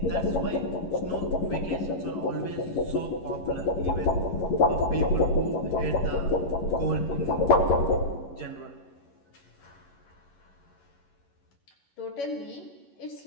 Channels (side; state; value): right; late; 11 ms